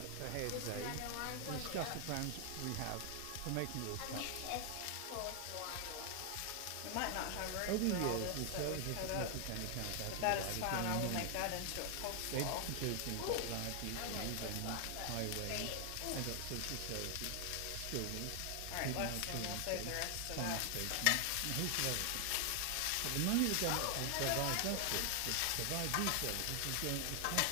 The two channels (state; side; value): different; both; correlation 0.00